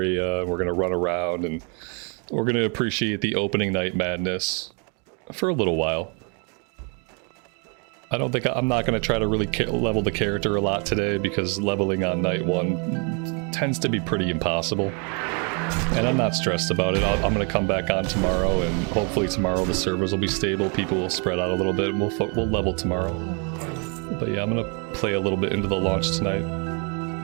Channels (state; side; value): quieter; left; 36.4 dB